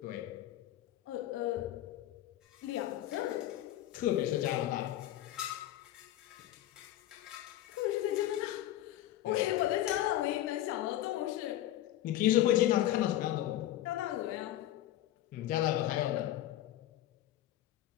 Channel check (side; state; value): right; quieter; 13.6 dB